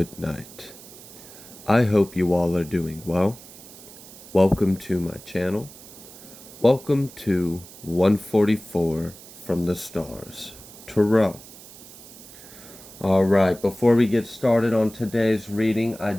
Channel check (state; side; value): noise; right; hiss, 18 dB below the sound